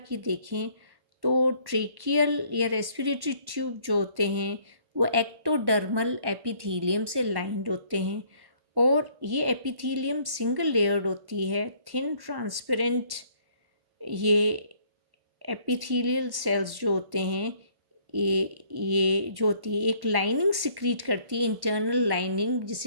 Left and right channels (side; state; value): left; late; 1.1 ms